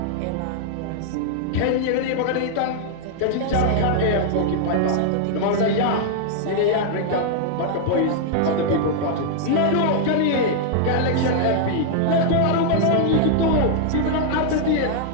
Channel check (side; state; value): both; different; correlation -0.01